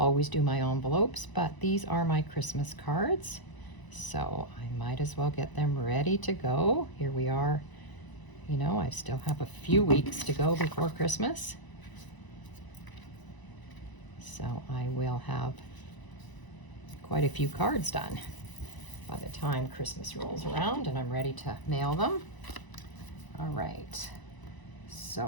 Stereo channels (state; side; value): late; right; 1.0 ms